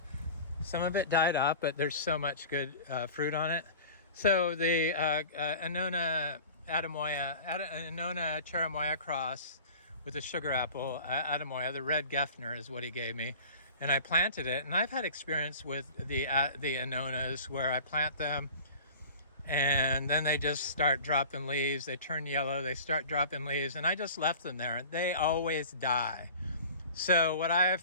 some of it died off, but there's so much good fruit on it. So the Annona Charichuelo cross with the sugar apple Atemoya, the Red Geffner is what he gave me, and I planted it. And I've had experience with the Annonas where I plant them, and then they just start dropping leaves. They turn yellow, they start dropping leaves, and I just left them there. They always die. So what I have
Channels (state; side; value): inverted; both; correlation -0.40